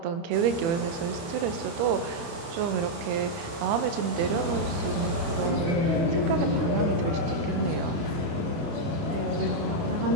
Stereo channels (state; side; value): late; left; 30 ms